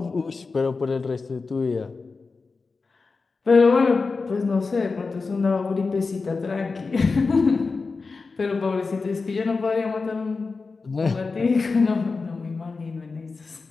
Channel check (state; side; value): quieter; right; 4.2 dB